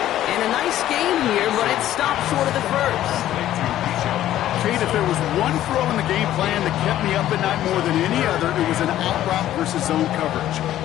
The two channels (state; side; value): quieter; right; 12.9 dB